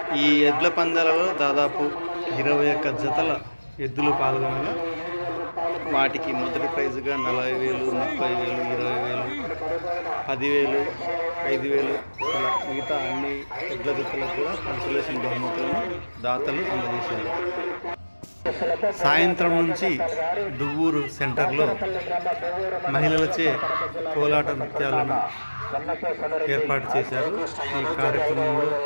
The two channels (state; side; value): inverted; both; correlation -1.00